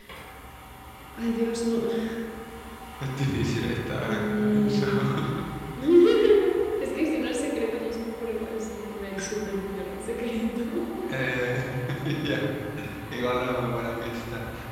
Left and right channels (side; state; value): both; identical; correlation 1.00